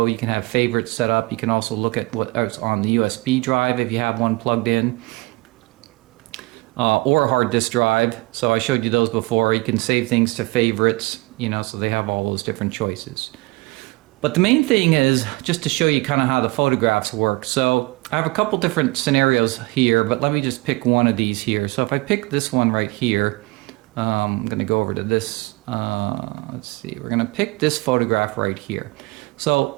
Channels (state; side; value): quieter; left; 25.0 dB